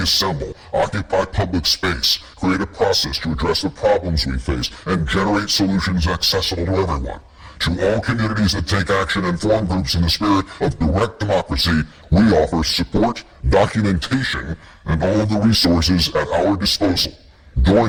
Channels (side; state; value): both; identical; correlation 1.00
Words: assemble, occupy public space, create a process to address the problems we face, and generate solutions accessible to everyone. To all communities that take action and form groups in the spirit of direct democracy, we offer support, documentation, and all of the resources at our disposal.